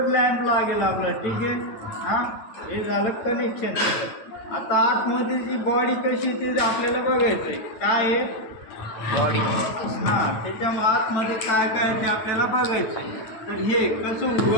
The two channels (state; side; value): late; right; 9.1 ms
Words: लॅम्प लागेल आपला, ठीक आहे. हां, हे झालं कनेक्शन. आता आतमध्ये जी बॉडी कशी ते आपल्याला बघायचं आहे. काय आहे? बॉडी. हां, त्याच्यामुळे आतमध्ये काय काय ते आपल्याला बघायचं आहे. तर हे कसं